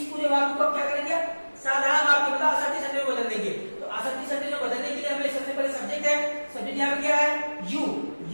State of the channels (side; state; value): both; inverted; correlation -1.00